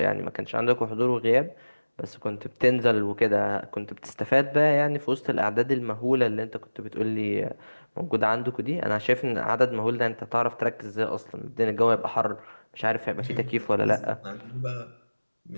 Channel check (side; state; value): both; inverted; correlation -1.00